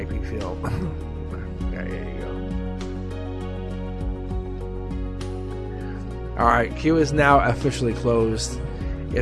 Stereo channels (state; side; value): identical; both; correlation 1.00